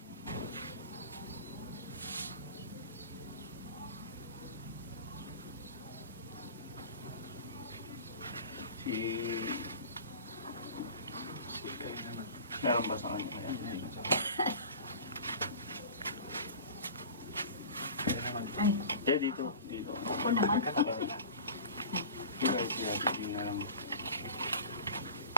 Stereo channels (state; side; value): inverted; both; correlation -0.37